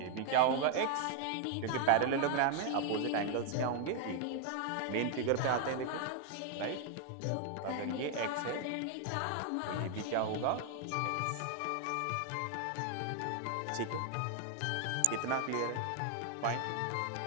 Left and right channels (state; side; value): different; both; correlation 0.00